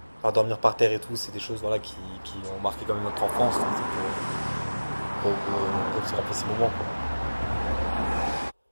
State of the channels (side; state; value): both; inverted; correlation -1.00